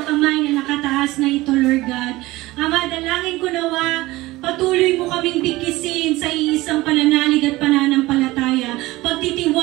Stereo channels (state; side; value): quieter; left; 19.1 dB